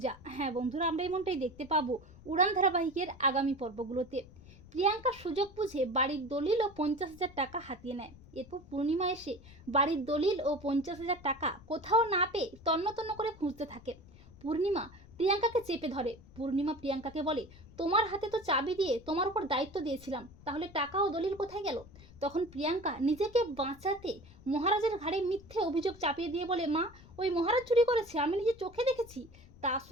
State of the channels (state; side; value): noise; left; rumble, 21 dB below the sound